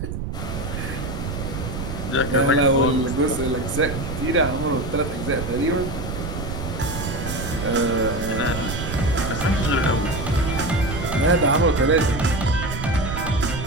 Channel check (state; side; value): noise; right; rumble, 5 dB below the sound